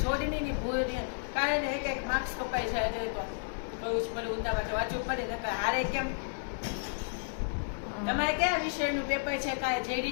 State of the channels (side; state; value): right; silent; digital silence